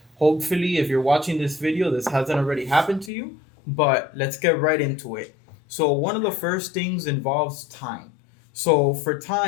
Hopefully, if you're watching this video, this hasn't already happened to you, but let's get right into it. So, one of the first things involves time. So, for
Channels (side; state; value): right; drops out; at 3.1 s